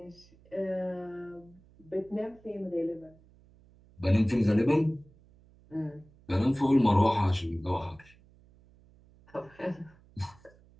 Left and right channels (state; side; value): noise; right; hum, 27 dB below the sound